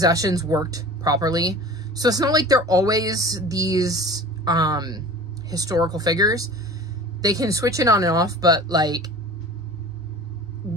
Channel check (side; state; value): both; normal; correlation 0.39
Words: worked properly. So it's not like they're always these historical figures. They can switch it on and off, but like